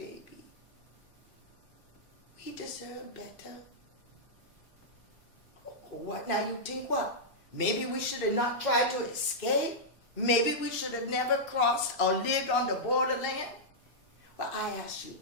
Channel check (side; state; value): both; normal; correlation -0.09